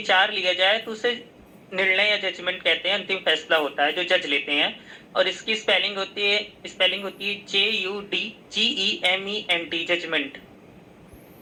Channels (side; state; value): both; identical; correlation 1.00